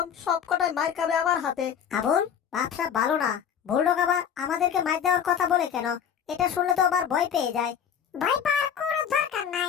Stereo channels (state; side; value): quieter; right; 8.2 dB